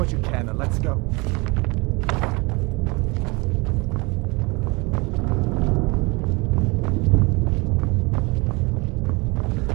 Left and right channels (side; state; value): left; quieter; 26.8 dB